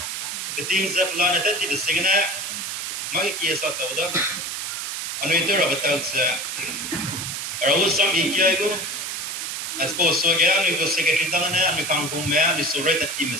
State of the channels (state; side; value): noise; right; hiss, 4 dB below the sound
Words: cái tin sẽ plan này thì bị xí cái này mấy cái sao tàu đó anh ấy tôi là bắt đầu sẽ rồi xong ý kia cũng as suppose so cái anh ấy có secretary đó này anh ấy càng cùng mẹ anh ấy số rate team